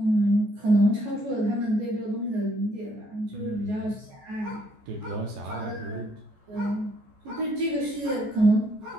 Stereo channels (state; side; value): late; left; 14 ms